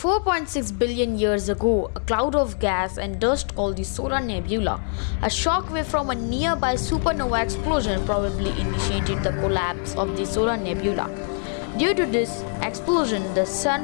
billion years ago, a cloud of gas and dust called the solar nebula, a shock wave from a nearby supernova explosion probably initiated the collapse of the solar nebula. Due to this explosion, the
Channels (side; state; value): right; silent; 57 dB below the other